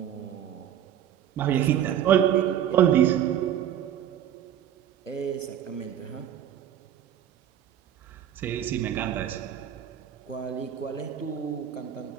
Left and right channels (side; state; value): left; quieter; 10.2 dB